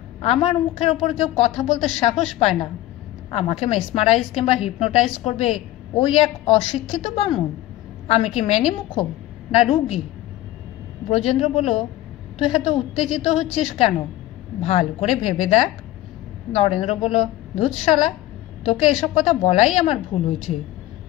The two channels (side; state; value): right; quieter; 15.2 dB